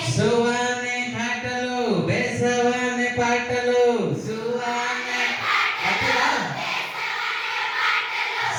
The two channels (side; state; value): both; identical; correlation 1.00